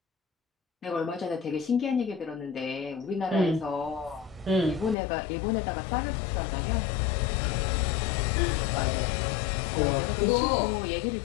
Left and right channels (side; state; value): right; drops out; at 5.0 s